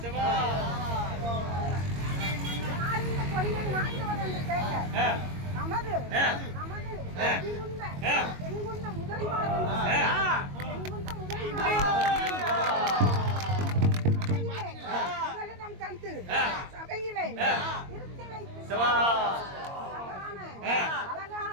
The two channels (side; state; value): left; late; 22 ms